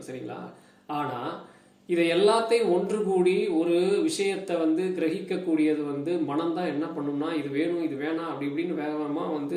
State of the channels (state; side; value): identical; both; correlation 1.00